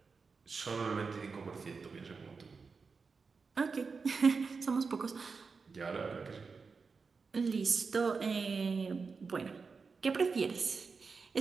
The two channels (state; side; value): quieter; left; 4.9 dB